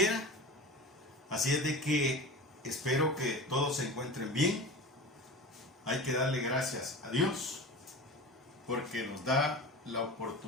Así es de que espero que todos se encuentren bien. Hay que darle gracias a Dios porque nos da la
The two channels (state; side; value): normal; both; correlation 0.33